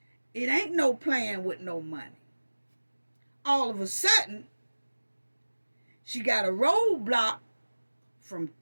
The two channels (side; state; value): both; inverted; correlation -1.00